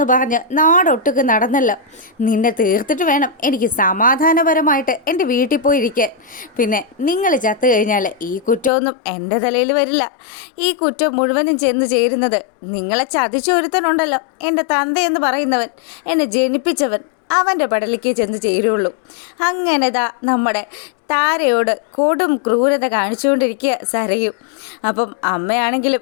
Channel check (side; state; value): right; drops out; at 8.7 s